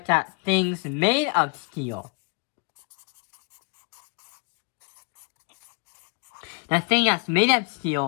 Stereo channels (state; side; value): quieter; right; 35.1 dB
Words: at things made of steel. The thing that's made of